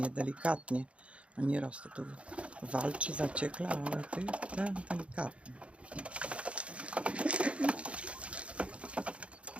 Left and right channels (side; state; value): left; late; 0.061 ms